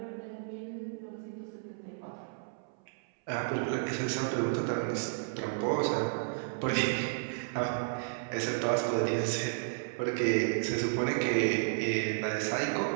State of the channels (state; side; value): silent; left; 56 dB below the other